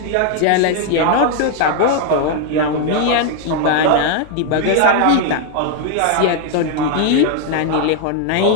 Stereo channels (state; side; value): different; both; correlation 0.00